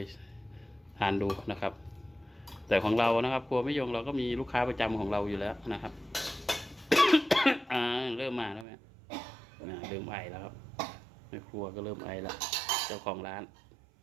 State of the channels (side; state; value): left; drops out; at 8.7 s